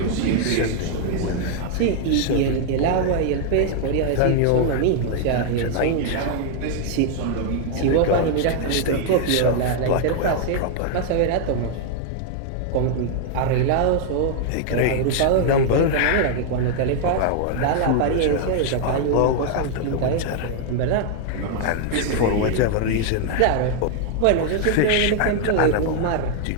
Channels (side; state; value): both; different; correlation 0.00